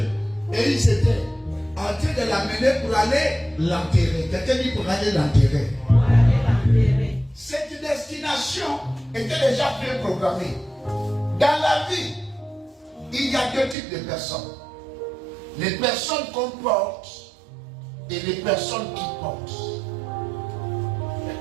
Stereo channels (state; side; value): drops out; left; at 13.8 s